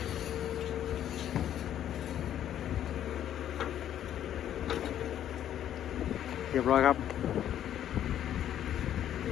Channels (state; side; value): quieter; right; 10.8 dB